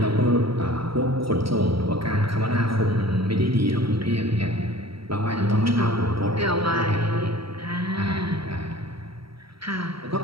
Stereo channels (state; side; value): late; left; 0.75 ms